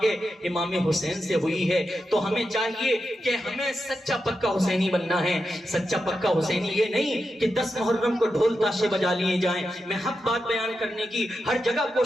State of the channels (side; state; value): both; normal; correlation 0.88